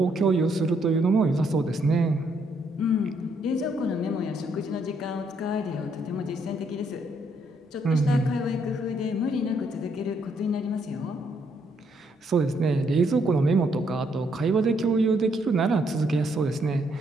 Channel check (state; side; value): normal; both; correlation 0.73